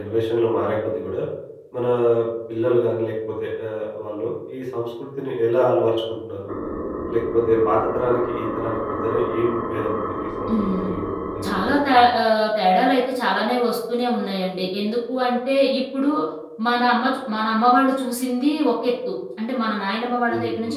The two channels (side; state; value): both; identical; correlation 1.00